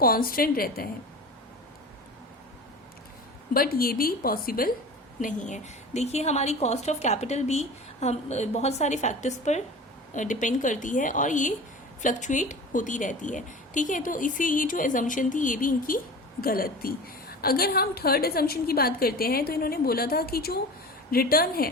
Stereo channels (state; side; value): normal; both; correlation 0.35